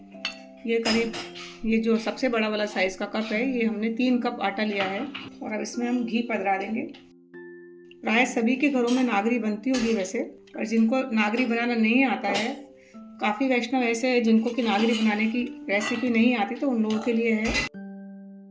ये करीब ये जो सबसे बड़ा वाला साइज़ का कप है, ये हमने 3 कप आटा लिया है। और अब इसमें हम घी पधरा देंगे। प्राय सभी के घरों में नागरी बनती होगी वैसे, और जिनको नागरी बनाना नहीं आता है, काफ़ी वैष्णव ऐसे हैं जिनको कि नागरी बनाने की रेसिपी नहीं आती, तो उन लोगों के लिए है।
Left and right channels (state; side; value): identical; both; correlation 1.00